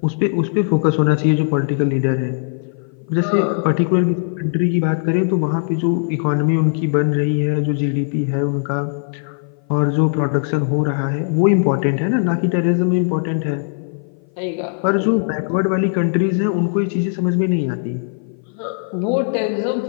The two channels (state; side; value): silent; right; 58 dB below the other